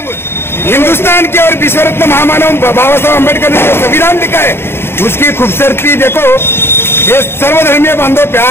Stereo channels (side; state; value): right; late; 0.11 ms